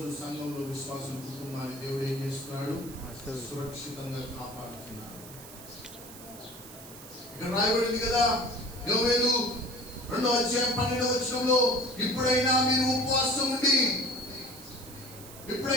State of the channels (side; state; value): right; noise; hiss, 16 dB below the sound